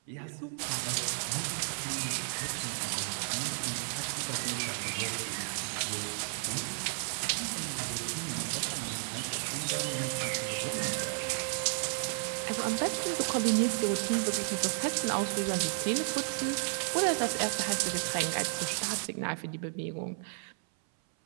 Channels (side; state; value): left; silent; 56 dB below the other